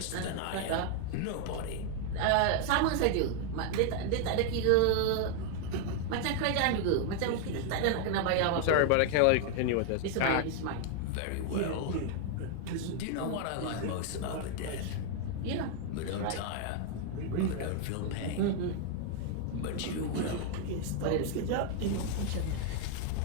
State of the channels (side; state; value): both; different; correlation 0.00